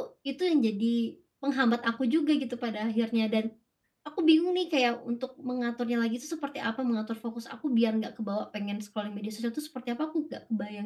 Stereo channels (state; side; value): identical; both; correlation 1.00